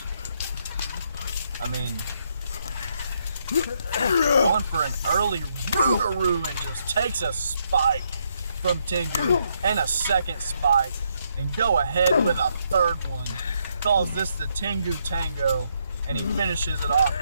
I mean, going for an early Rougarou and just takes a spike from Tengu and a second spike and go ahead with a third one. Calls this the Tengu Tango, and he finishes it off,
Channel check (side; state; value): both; inverted; correlation -0.76